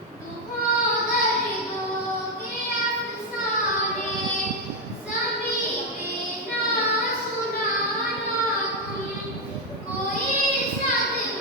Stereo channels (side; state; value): both; normal; correlation 0.03